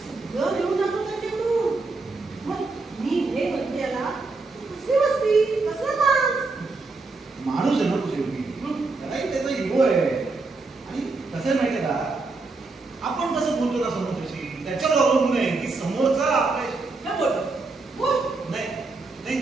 सगळं घेऊन जातो त्यांच्याकडून. मग मी हे म्हणते याला कसली मस्ती, कसला मास. माणूस आहे ना तो शेवटी. त्यालाही त्याचा इगो आहे. आणि कसं आहे माहिती आहे का, आपण कसं बोलतो ना समोरच्याशी त्याच्यावर अवलंबून आहे की समोरचा आपल्या बोल बोल. नाही नाही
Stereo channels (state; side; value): quieter; left; 3.7 dB